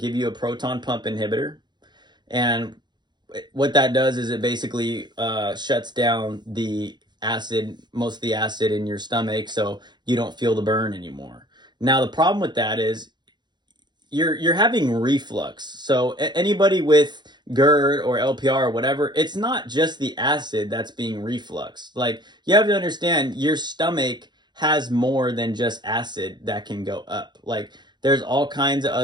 you a proton pump inhibitor, and what that does is it basically shuts down the acid, most of the acid in your stomach, so you don't feel the burn anymore. Now the problem with that is you're having reflux. So anybody with GERD or LPR or whatever, it's not just the acid that's being refluxed. Like, you have to understand, your stomach has more than just acid that can go up. Like, there's all kinds of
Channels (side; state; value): left; late; 0.21 ms